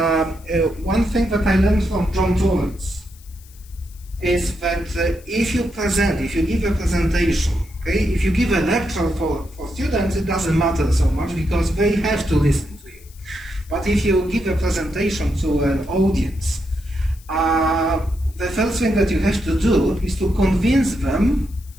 one thing that I learned from John Torrance is that if you give a presentation, okay, if you give a lecture for students, it doesn't matter so much because they have to listen to you. But if you give a presentation to an audience, the first thing that you have to do is to convince them,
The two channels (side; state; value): left; noise; hiss, 25 dB below the sound